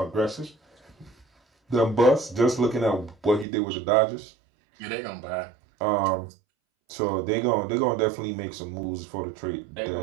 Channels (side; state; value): left; drops out; at 3.5 s